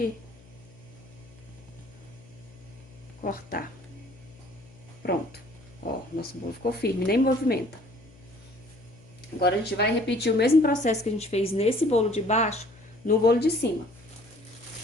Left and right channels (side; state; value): left; noise; hum, 24 dB below the sound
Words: cortar. Pronto. Ó, nosso bolo ficou firme, nem movimenta. Agora, a gente vai repetir o mesmo processo que a gente fez nesse bolo de baixo, no bolo de cima.